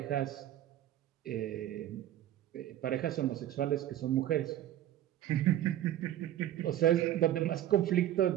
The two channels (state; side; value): quieter; left; 12.5 dB